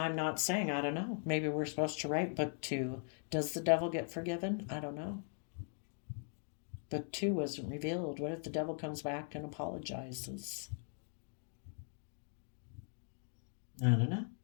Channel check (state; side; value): silent; right; 51 dB below the other